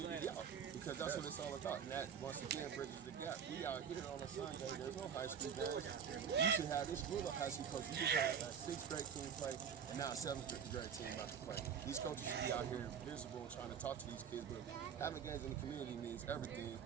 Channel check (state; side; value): quieter; left; 7.5 dB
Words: out, because that's what it's all about. And that, once again, bridges the gap. We out here on a Sunday, there's no high school games. You should have this group of high school coaches. You just had a 6th grade team play, and now a 7th grade team about to play. These coaches should be out here visible and trying to talk to these kids, but having games in the community means everything,